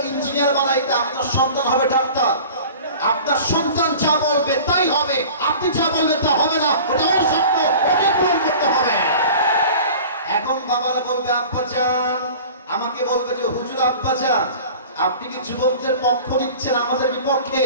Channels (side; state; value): both; inverted; correlation -0.41